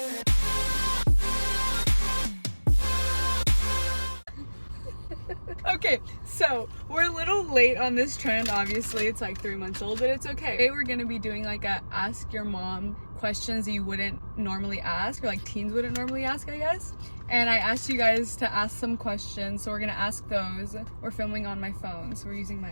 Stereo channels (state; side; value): inverted; both; correlation -1.00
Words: Okay, so we're a little late on this trend. Obviously, it's like 3 months old, but it's okay. Today we're gonna be doing like a ask your mom questions that you wouldn't normally ask, or like teens wouldn't normally ask, I guess. And I asked you guys to ask some questions, so we're gonna ask those. We're filming on my phone, so we're using my